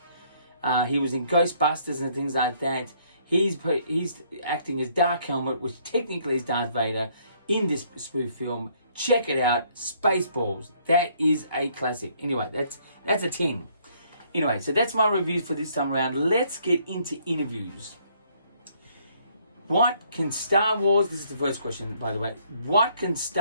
He was in Ghostbusters and things like that. He's acting as Dark Helmet, which technically is Darth Vader, in this spoof film. Check it out, Spaceballs. That is a classic. Anyway, that's a 10. Anyway, so that's my review for this time around. Let's get into interviews. What can Star Wars, this is the first question, by the way, what can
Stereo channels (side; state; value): both; inverted; correlation -0.66